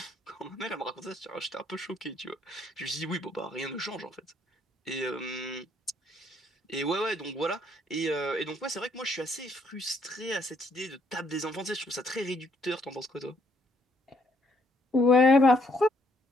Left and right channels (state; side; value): normal; both; correlation 0.69